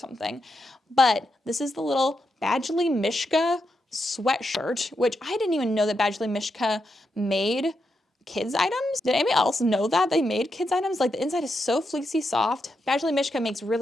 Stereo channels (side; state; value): both; normal; correlation 0.84